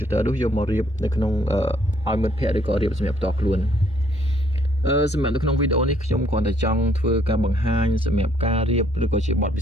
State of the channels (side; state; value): both; normal; correlation 0.66